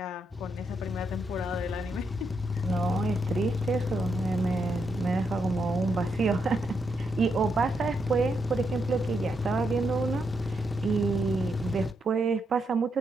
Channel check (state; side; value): normal; both; correlation 0.80